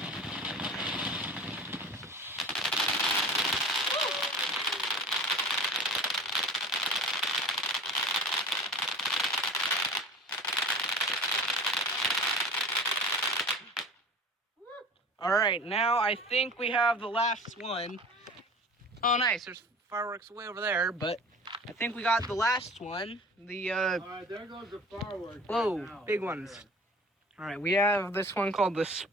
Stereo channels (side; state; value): both; normal; correlation 0.39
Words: All right, now I think we have the last one. Oh, nice. There's fireworks way over there, but I think we got the last one. The All right, there goes the fireworks. whoa, right now, big over ones. there. All right, we have this one called the